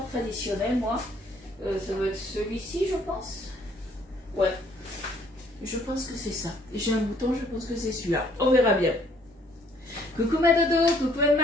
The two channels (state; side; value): normal; both; correlation 0.62